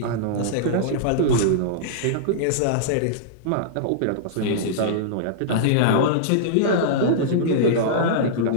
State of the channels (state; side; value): different; both; correlation -0.02